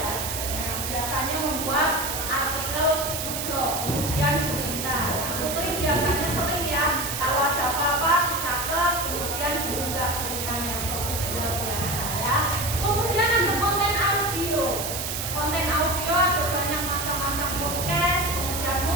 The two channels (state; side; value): noise; right; hiss, 4 dB below the sound